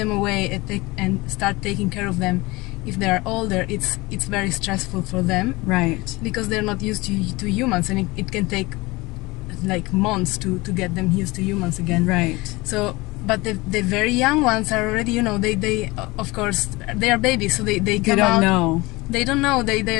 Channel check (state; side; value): quieter; right; 22.4 dB